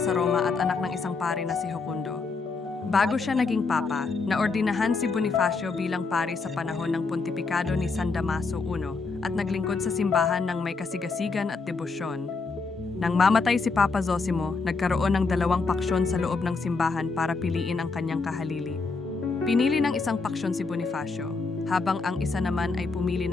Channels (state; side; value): quieter; right; 4.2 dB